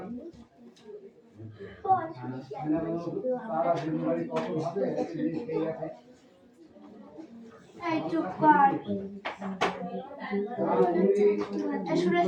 সারা দিন বাড়ি কত হবে এই আছে। এই চুপ কর, শুনে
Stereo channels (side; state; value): both; identical; correlation 1.00